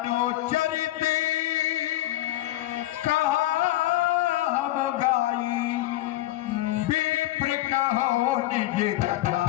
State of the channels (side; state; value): right; quieter; 15.8 dB